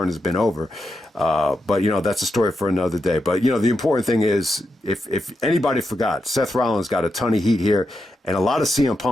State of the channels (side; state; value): both; normal; correlation 0.86